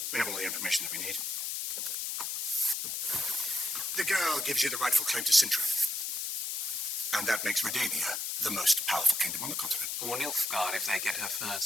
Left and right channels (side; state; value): left; noise; hiss, 2 dB below the sound